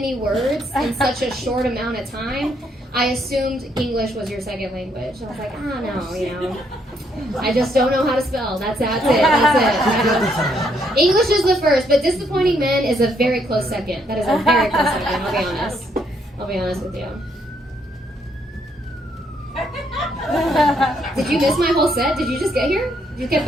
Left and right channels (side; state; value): both; normal; correlation 0.72